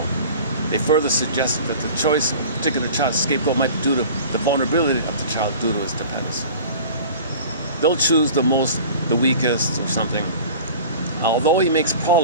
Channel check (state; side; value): inverted; both; correlation -0.41